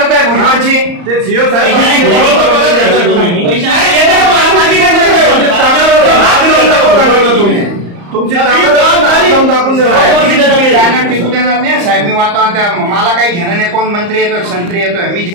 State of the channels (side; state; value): left; late; 34 ms